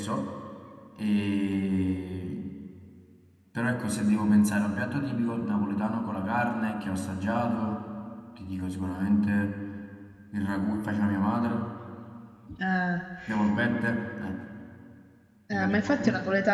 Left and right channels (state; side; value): identical; both; correlation 1.00